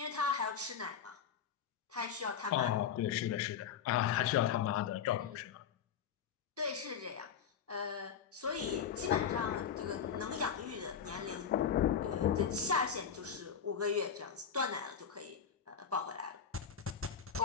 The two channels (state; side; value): quieter; right; 7.7 dB